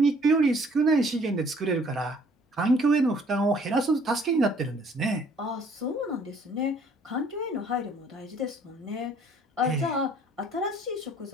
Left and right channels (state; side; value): normal; both; correlation 0.59